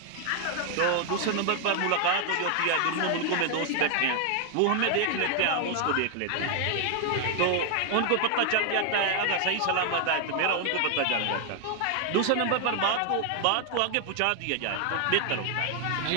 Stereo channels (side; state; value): both; different; correlation 0.00